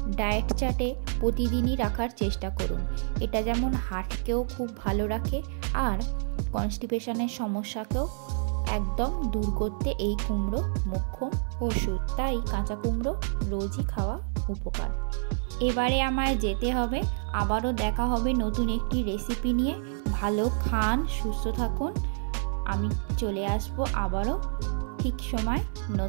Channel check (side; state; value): left; silent; 59 dB below the other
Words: ডায়েট চার্টে প্রতিদিনই রাখার চেষ্টা করুন। এটা যেমন হার্টকেও খুব ভালো রাখে, আর কনস্টিপেশনের সমস্যাকেও একদম দূর করতে এই কুমড়ো মোক্ষম ওষুধ। তাই কাঁচা কুমড়ো রোজই খাওয়া উপকার। এবারে আমায় যেতে হবে, আবারও দেখা হবে নতুন একটি রেসিপি নিয়ে। ভালো খান, সুস্থ থাকুন, আমি চলে আসবো আবারও ঠিক সময়